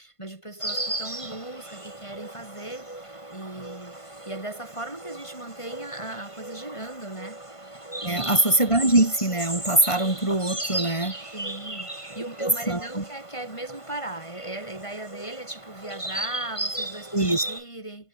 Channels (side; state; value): right; late; 1.5 ms